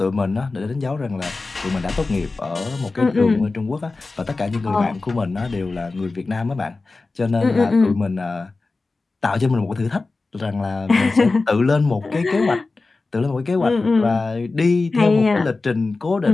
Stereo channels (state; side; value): quieter; right; 3.6 dB